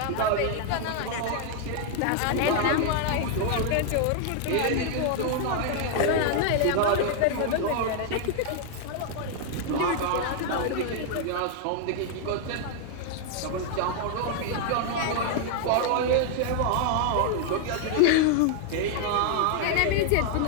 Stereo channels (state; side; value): different; both; correlation 0.00